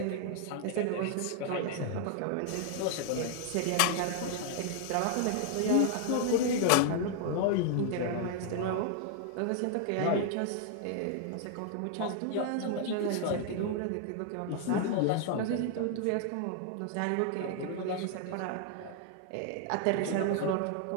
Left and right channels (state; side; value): different; both; correlation 0.00